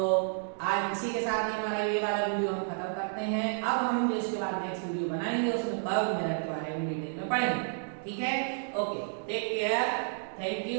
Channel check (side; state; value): left; silent; digital silence